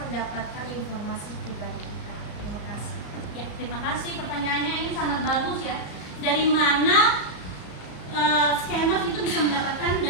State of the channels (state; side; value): late; right; 34 ms